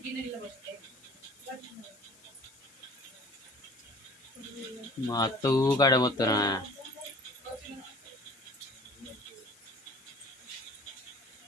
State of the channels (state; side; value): noise; left; hiss, 25 dB below the sound